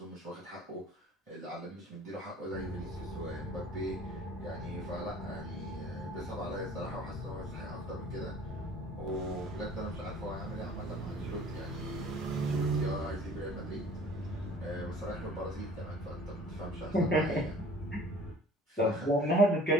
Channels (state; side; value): normal; both; correlation 0.50